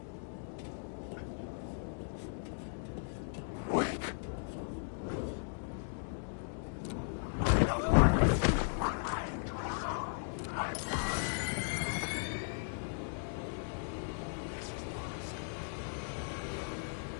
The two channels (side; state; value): right; silent; digital silence